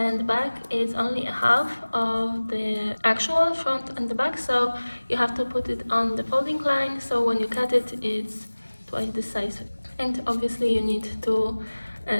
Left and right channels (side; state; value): both; inverted; correlation -1.00